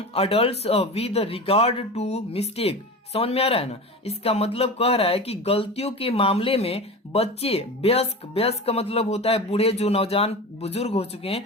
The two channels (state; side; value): normal; both; correlation 0.30